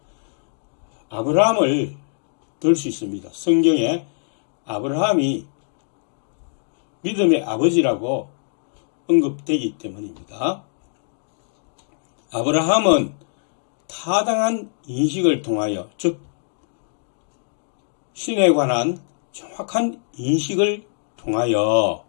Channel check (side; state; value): right; silent; digital silence